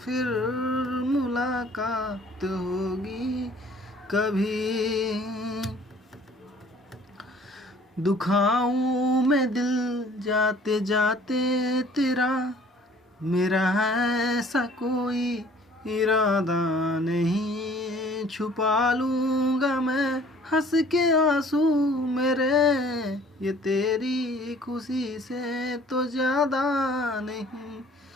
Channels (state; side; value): normal; both; correlation 0.53